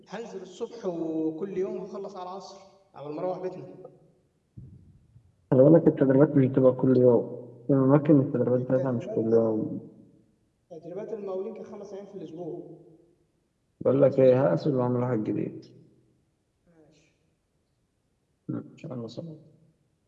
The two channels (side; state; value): both; identical; correlation 1.00